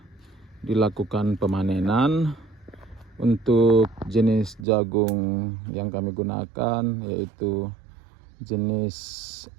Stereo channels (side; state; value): left; drops out; at 4.7 s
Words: dilakukan pemanenan. Untuk jenis jagung yang kami gunakan yaitu jenis